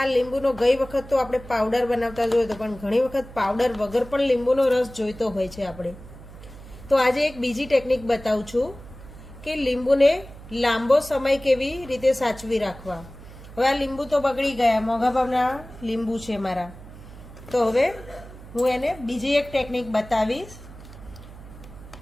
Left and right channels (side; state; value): right; noise; hum, 17 dB below the sound